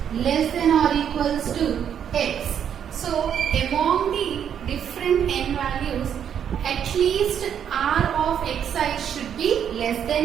less than or equals to x. So among the different n values, at least r of xi should be less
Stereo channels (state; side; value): quieter; left; 8.7 dB